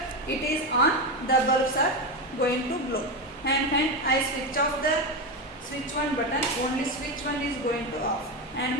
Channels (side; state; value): both; normal; correlation 0.15